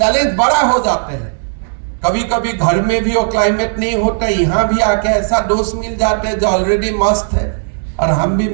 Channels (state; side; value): silent; left; digital silence